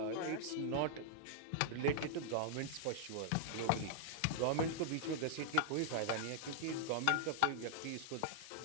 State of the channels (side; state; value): both; different; correlation -0.01